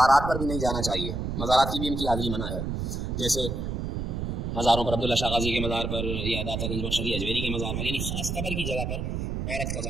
پر بھی نہیں جانا چاہیے. مزارات کی بھی ان کی حاضری منع ہے. جیسے مزاروں پر عبداللہ شاہ غازی کے مزار پر یا داتا گنج بخش علی اجمیری کے مزار پر، یعنی خاص قبر کی جگہ پر عورت کا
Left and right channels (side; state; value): right; noise; rumble, 2 dB below the sound